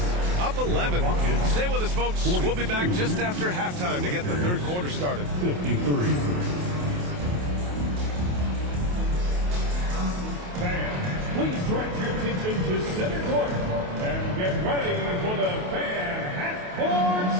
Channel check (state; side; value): late; left; 28 ms